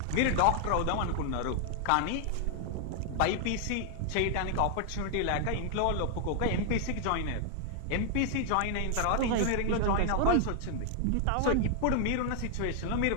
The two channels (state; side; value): different; both; correlation 0.00